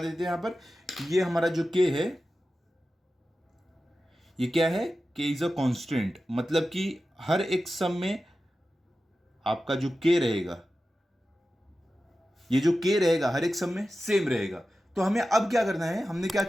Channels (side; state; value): both; normal; correlation 0.93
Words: हैं यहाँ पर, ये हमारा जो k है, ये क्या है, k इज अ कांस्टेंट, मतलब कि हर एक सम में आपका जो k रहेगा, ये जो k रहेगा हर एक सम में सेम रहेगा। तो हमें अब क्या करना है, हमने क्या